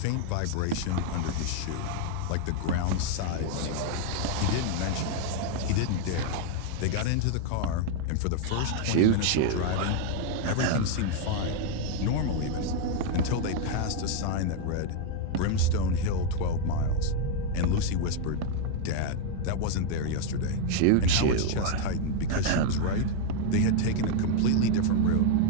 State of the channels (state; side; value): different; both; correlation 0.00